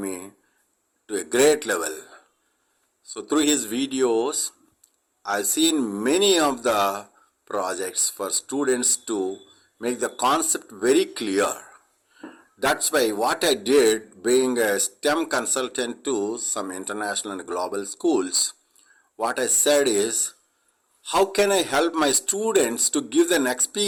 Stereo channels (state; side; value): identical; both; correlation 1.00